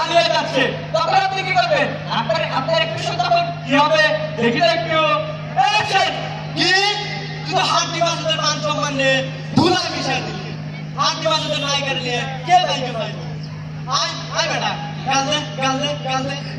যাচ্ছে, তখন আপনি কি করবেন? আপনার একটু তখন কি হবে দেখি তো একটু। অ্যাকশন! কি তুই তো হাড্ডি মাসুদের মান সম্মান নিয়ে ধুলা মিশাই দিলি। হাড্ডি মাসুদের নায়িকার নিয়ে কে নায়িকা পাইব? আয় আয় বেটা, গাল দে।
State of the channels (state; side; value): identical; both; correlation 1.00